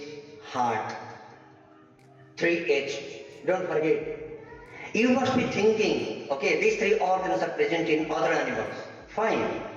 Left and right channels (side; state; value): both; identical; correlation 1.00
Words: heart. 3H. Don't forget. You must be thinking, okay, these three organs are present in other animals. Fine.